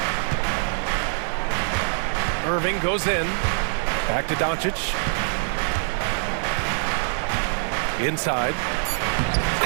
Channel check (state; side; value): silent; left; 62 dB below the other